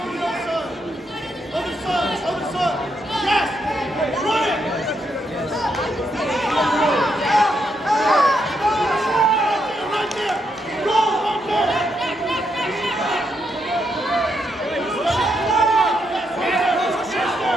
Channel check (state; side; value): normal; both; correlation 0.79